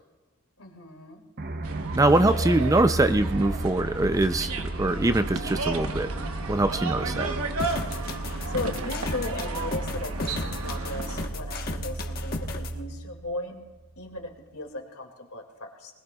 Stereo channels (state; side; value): normal; both; correlation 0.62